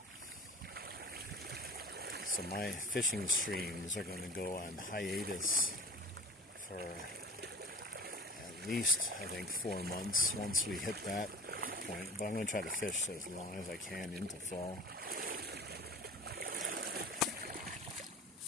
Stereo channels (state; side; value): normal; both; correlation 0.41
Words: So my fishing streams are going to go on hiatus for at least, I think, 4 months once we hit that point. But I'm going to try to fish as long as I can into fall.